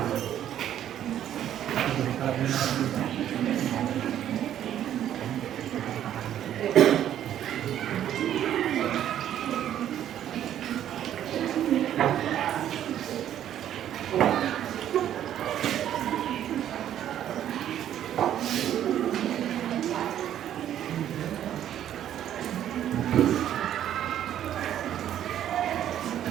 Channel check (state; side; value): quieter; left; 10.9 dB